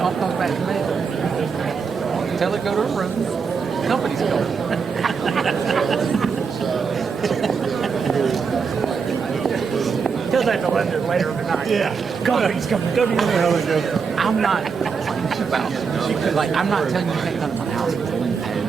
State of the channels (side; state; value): left; quieter; 5.7 dB